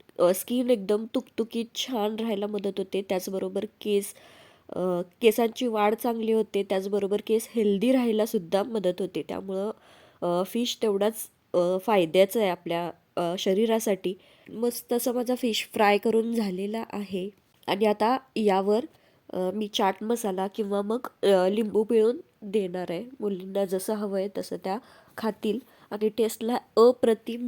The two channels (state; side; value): identical; both; correlation 1.00